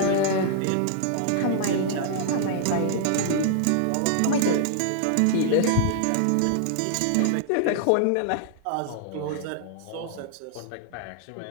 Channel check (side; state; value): both; different; correlation -0.01